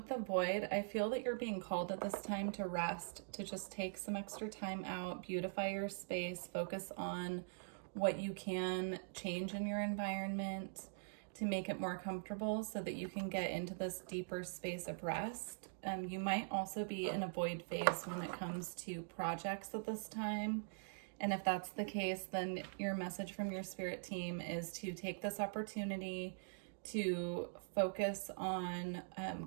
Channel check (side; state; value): left; silent; digital silence